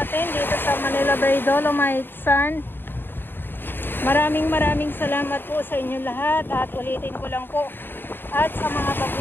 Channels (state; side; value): late; right; 0.098 ms